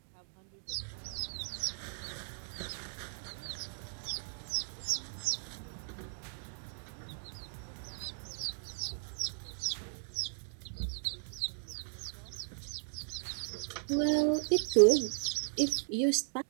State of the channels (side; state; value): left; silent; digital silence